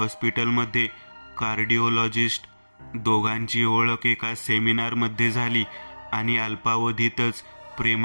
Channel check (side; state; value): both; inverted; correlation -1.00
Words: कार्डिओलॉजिस्ट. दोघांची ओळख एका सेमिनारमध्ये झाली आणि अल्पावधीतच